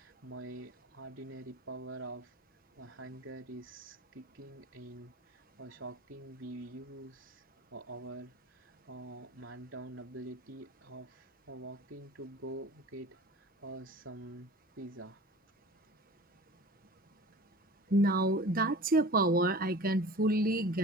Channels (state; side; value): normal; both; correlation 0.41